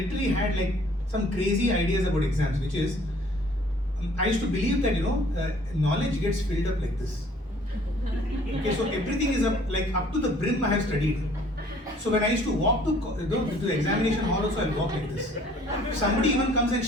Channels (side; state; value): both; normal; correlation 0.56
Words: had like some crazy ideas about exams, which is, I used to believe that, knowledge gets filled up like this. Okay, so everything is up to the brim I have studied. So when I used to walk to the examination hall also, I'll walk like this. If somebody even comes and